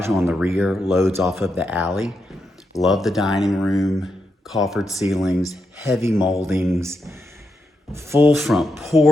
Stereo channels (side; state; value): both; normal; correlation 0.84